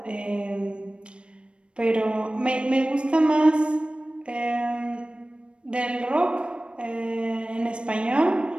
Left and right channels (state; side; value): late; left; 0.057 ms